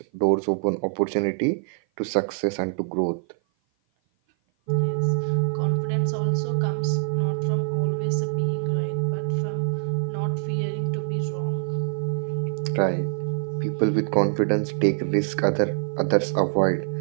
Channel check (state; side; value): silent; left; 56 dB below the other